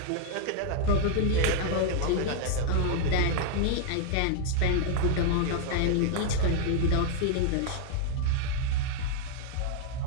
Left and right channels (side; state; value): both; different; correlation 0.00